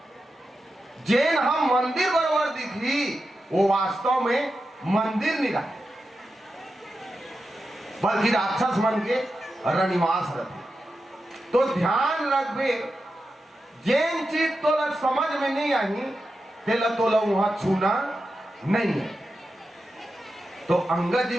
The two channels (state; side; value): normal; both; correlation 0.90